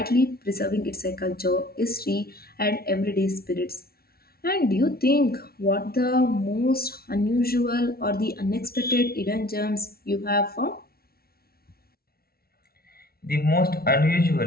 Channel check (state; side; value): late; right; 0.44 ms